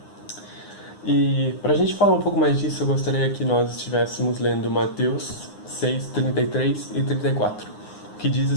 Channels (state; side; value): late; right; 9.7 ms